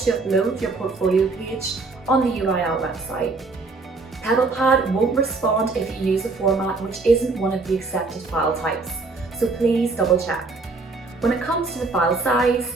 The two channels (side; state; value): left; quieter; 3.8 dB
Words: Upload Your Portfolio page on the UAL website. PebblePad won't respond if you use a format which isn't one of the accepted file types, so please double check. When it comes to the file size,